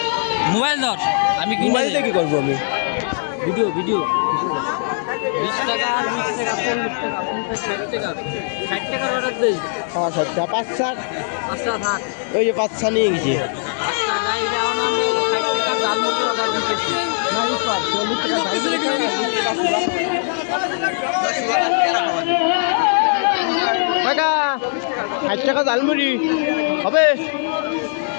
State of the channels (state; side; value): silent; right; digital silence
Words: মোবাইল ধর, আমি মোবাইল দিয়ে কি করবো আমি? ভিডিও 20 টাকা আর 20 টাকা 40 টাকা 50 60 টাকা 60 টাকার অর্ডার দেই? 60 টাকা 5 ছা। আচ্ছা থাক। ওই যে 5 ছা নিয়ে গেছি। আচ্ছা গাই এখন আমরা 60 টাকা জালমুড়ি অর্ডার দিতেছি। না এই 40 টাকা দাম দিতে। কাকা 60 টাকা জালমুড়ি হবে?